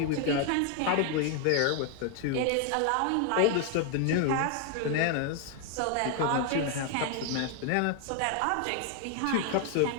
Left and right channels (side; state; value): both; different; correlation 0.00